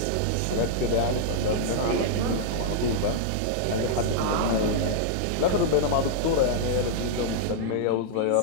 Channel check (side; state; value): both; different; correlation -0.02